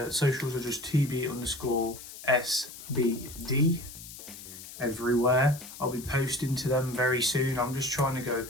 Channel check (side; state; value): left; noise; hiss, 14 dB below the sound